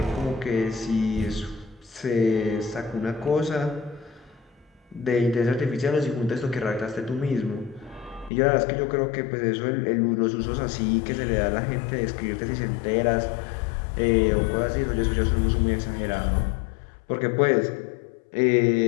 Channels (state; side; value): drops out; right; at 8.3 s